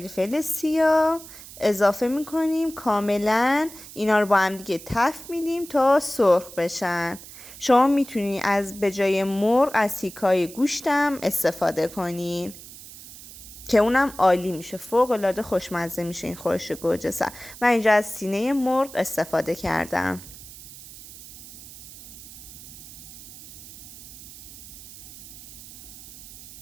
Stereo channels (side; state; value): right; noise; hiss, 16 dB below the sound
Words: سیاه اضافه میکنیم، کاملا اینا رو با هم دیگه تفت میدیم تا سرخ بشن. شما میتونید از به جای مرغ از تیکای گوشتم استفاده کنین که اونم عالی میشه، فوق العاده خوشمزه میشه این خورش گوجه سبز. من اینجا از سینه مرغ استفاده کردم.